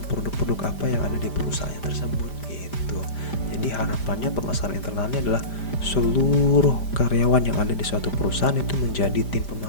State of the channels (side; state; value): right; late; 5.0 ms